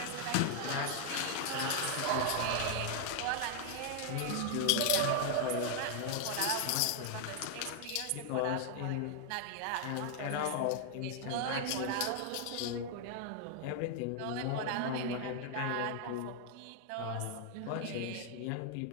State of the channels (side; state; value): both; different; correlation 0.00